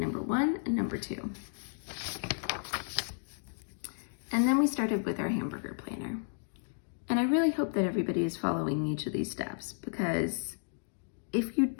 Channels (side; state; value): right; silent; digital silence